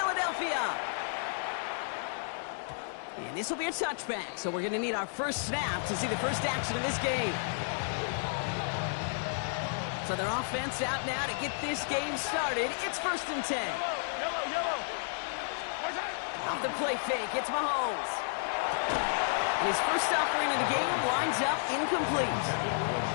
And this will be a touchback, so we're going to need our first snap to see the first action of this game. So their offense out now to get this game started. It's 1st and 10. Yellow. Off the play fake, it's Mahomes. And his first offering in the game lines up incomplete.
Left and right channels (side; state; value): right; silent; digital silence